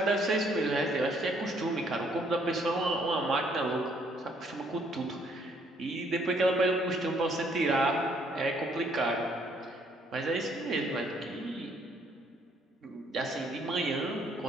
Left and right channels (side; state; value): both; normal; correlation 0.66